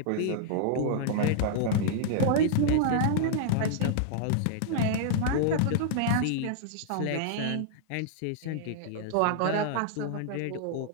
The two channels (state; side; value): different; both; correlation -0.01